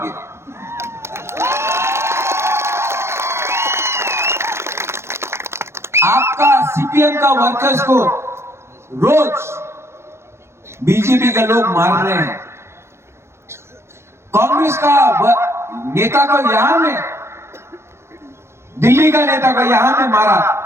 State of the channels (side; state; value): left; late; 0.13 ms